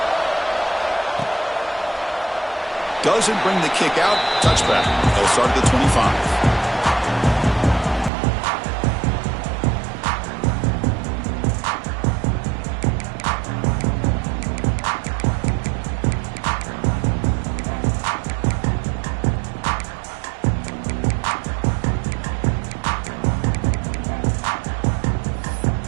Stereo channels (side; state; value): left; drops out; at 8.1 s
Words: Doesn't bring the kick out. Touchback. They'll start at the 25.